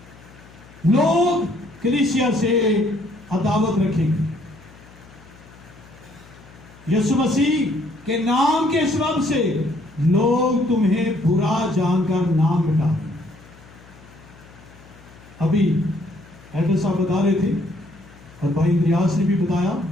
لوگ کلیسیا سے عداوت رکھیں گے. یسوع مسیح کے نام کے سبب سے لوگ تمہیں برا جان کر نام مٹا دیں. ابھی ایڈر صاحب بتا رہے تھے اور بھائی ریاض نے بھی بتایا,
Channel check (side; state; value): left; noise; hum, 23 dB below the sound